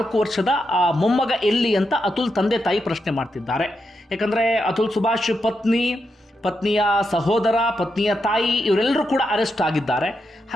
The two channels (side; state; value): both; normal; correlation 0.84